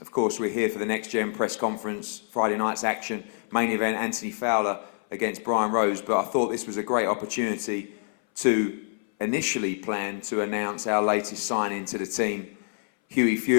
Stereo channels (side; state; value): right; silent; 60 dB below the other